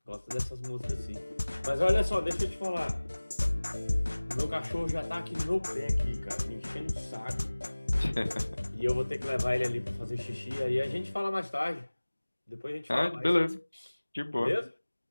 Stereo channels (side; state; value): both; inverted; correlation -1.00